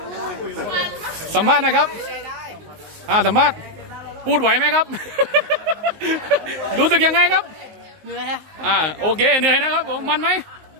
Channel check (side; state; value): left; late; 19 ms